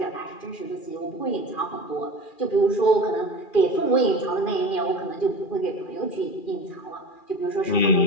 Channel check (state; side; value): late; right; 2.4 ms